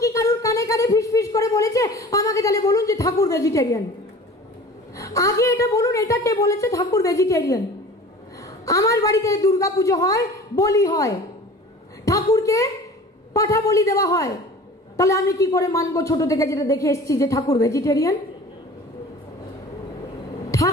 কি কারুর কানে কানে ফিস করে বলেছে? আমাকে তাহলে বলুন যে ঠাকুর ভেজিটেরিয়ান। আগে এটা বলুন, এটা কে বলেছে ঠাকুর ভেজিটেরিয়ান? আমার বাড়িতে দুর্গা পুজো হয়, বলি হয়, ঠাকুরকে পাঠা বলি দেওয়া হয়, তাহলে আমি কি করে মানবো ছোট থেকে যেটা দেখে এসেছি যে ঠাকুর ভেজিটেরিয়ান?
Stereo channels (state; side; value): normal; both; correlation 0.42